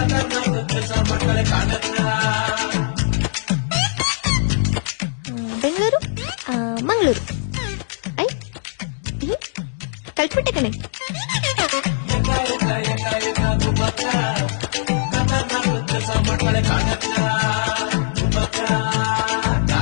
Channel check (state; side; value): silent; right; digital silence